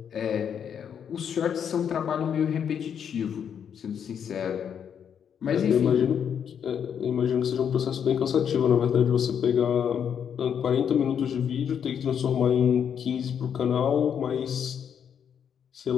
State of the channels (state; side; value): quieter; right; 8.1 dB